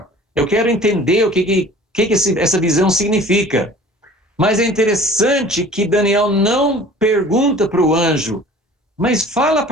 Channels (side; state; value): both; normal; correlation 0.46